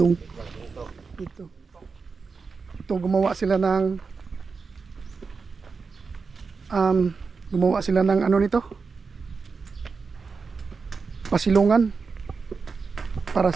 Ito gumawa sila ng ano nito? Pasilungan. Para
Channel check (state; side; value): quieter; left; 4.9 dB